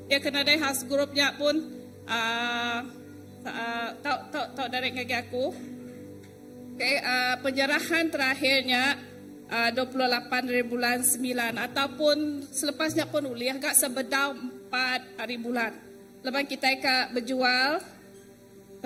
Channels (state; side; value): identical; both; correlation 1.00